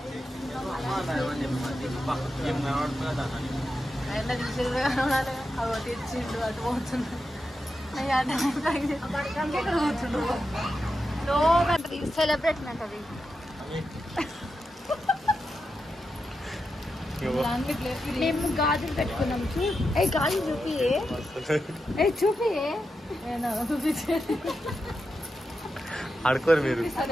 అవి తెచ్చిండు అటు పోతుండ్రు. సెలబ్రేషన్ అంటది. మేము గాజులు పెట్టుకున్నాం. గాజులు చూపియే, చూపియే. చూపించే ఆడుకోరు మీరు.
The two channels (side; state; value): both; normal; correlation 0.88